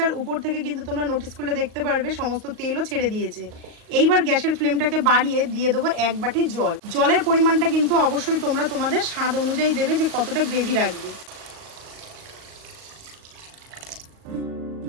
আর উপর থেকে কিন্তু তোমরা নোটিস করলে দেখতে পারবে সমস্ত তেলও ছেড়ে দিয়েছে। এইবার গ্যাসের ফ্লেমটাকে বাড়িয়ে দিয়ে দেবো 1 বাটি জল। জলের পরিমাণটা কিন্তু অবশ্যই তোমরা তোমাদের স্বাদ অনুযায়ী দেবে যে কতটা গ্রেভি রাখবে।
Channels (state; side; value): late; left; 38 ms